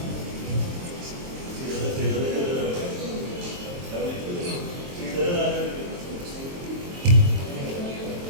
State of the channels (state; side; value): late; left; 23 ms